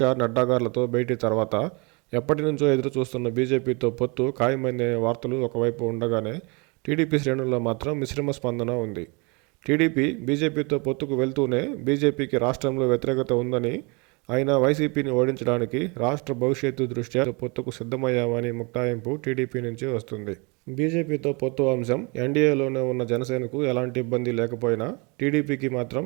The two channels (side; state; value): left; quieter; 30.1 dB